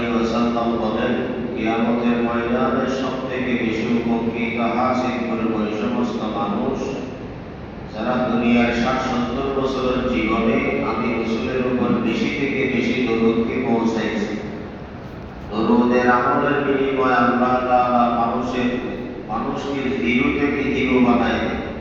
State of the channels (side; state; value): both; identical; correlation 1.00